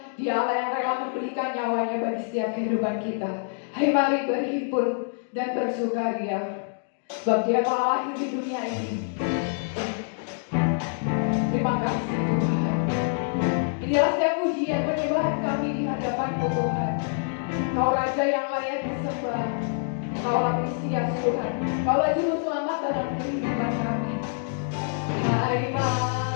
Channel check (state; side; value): silent; right; digital silence